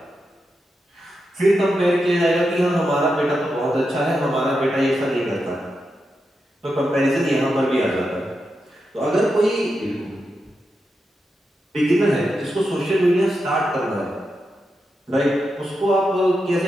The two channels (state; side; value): normal; both; correlation 0.87